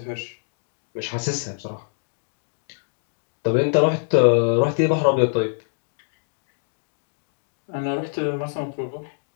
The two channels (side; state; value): right; silent; digital silence